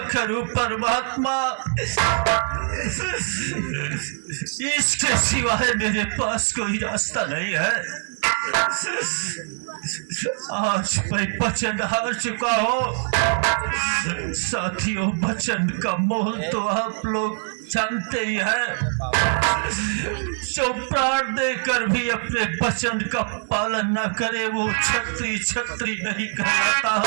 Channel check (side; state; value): left; silent; digital silence